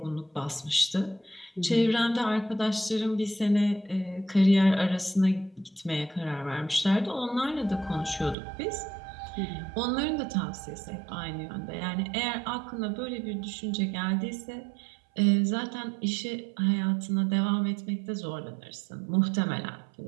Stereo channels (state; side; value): drops out; left; at 8.3 s